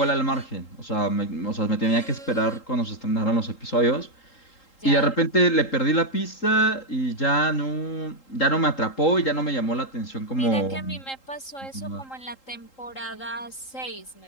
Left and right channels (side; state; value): right; late; 3.8 ms